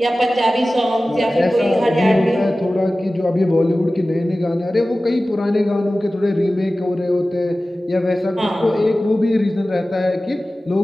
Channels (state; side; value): normal; both; correlation 0.96